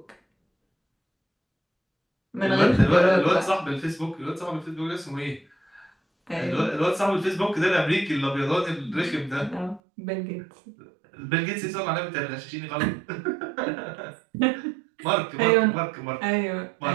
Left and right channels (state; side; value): drops out; left; at 9.8 s